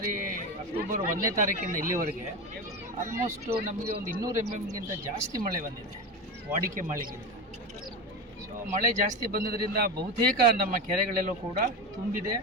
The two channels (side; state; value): both; normal; correlation 0.21